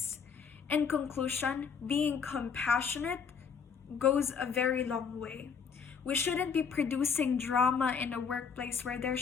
In conclusion, being compassionate goes a very long way. We shouldn't be producing drama in a workplace where there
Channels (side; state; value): right; quieter; 6.3 dB